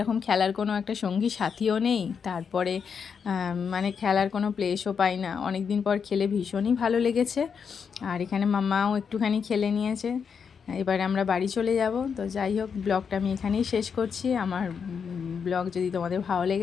খেলার কোনো একটা সঙ্গী সাথীও নেই, তারপরে মানে খেলার কোনো প্লেসও পাই না। অনেক দিন পর খেলে ভীষণই ভালো লেগেছে। আর এখানে মামাও একটুখানি খেলে নিয়েছে। এবারে আমরা বাড়ি চলে যাব। তো যাই হোক, ব্লগটা আমি এখানেই শেষ করছি। আমার ব্লগ যদি তোমাদের ভালো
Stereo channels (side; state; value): right; quieter; 6.5 dB